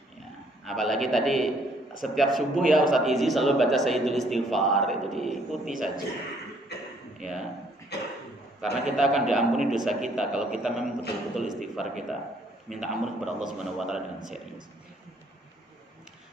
Ya, apalagi tadi setiap subuh ya Ustaz Izi selalu baca Sayyidul Istighfar, itu diikuti saja. Ya, karena kita akan diampuni dosa kita kalau kita memang betul-betul istighfar, kita minta ampun kepada Allah Subhanahu wa taala dengan serius.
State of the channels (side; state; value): both; normal; correlation 0.64